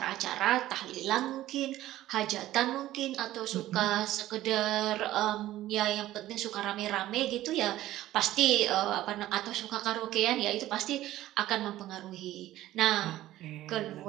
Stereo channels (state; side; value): quieter; left; 14.7 dB